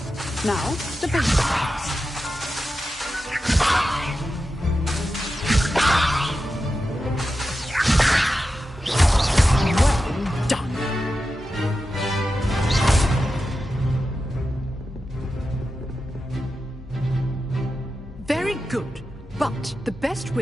Now, the basic cast. Well done. Very good. But the best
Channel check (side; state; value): both; normal; correlation 0.91